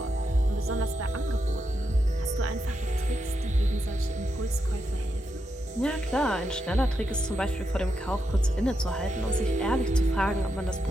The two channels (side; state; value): both; normal; correlation 0.84